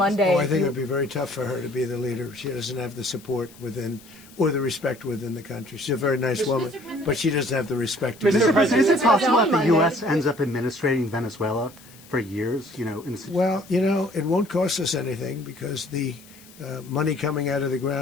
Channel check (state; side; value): noise; left; hiss, 23 dB below the sound